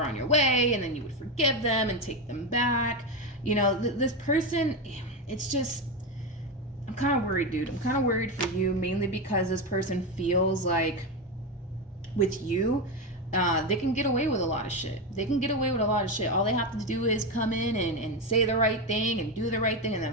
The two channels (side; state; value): both; normal; correlation 0.13